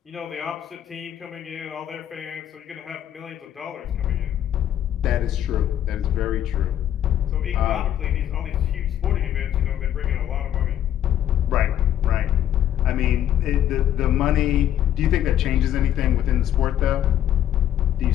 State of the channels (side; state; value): right; quieter; 10.9 dB